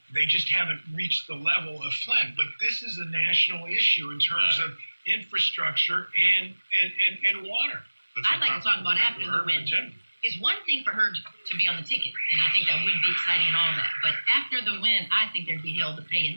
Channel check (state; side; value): inverted; both; correlation -1.00